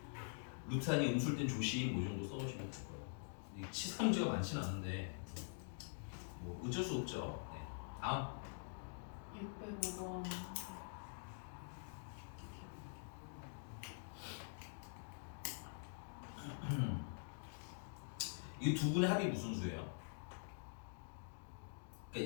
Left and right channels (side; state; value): right; silent; digital silence